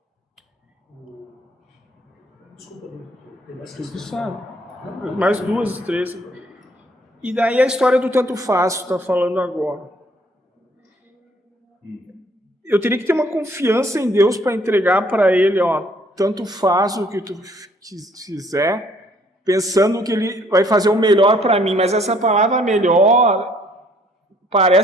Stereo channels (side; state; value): both; normal; correlation 0.62